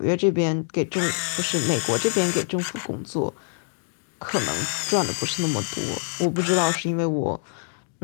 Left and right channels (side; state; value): right; silent; digital silence